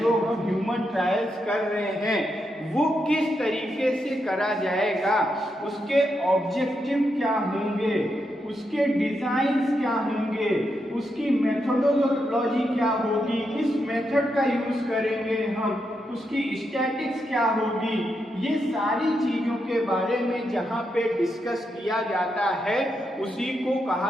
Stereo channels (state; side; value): normal; both; correlation 0.83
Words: हम ह्यूमन ट्रायल्स कर रहे हैं, वो किस तरीके से करा जाएगा, उसके ऑब्जेक्टिव क्या होंगे, उसके डिजाइन्स क्या होंगे, उसकी मेथोडोलॉजी क्या होगी, किस मेथड का यूज करेंगे हम, उसकी स्टैटिक्स क्या होगी, ये सारी चीजों के बारे में जहां पे डिस्कस किया जाता है उसी को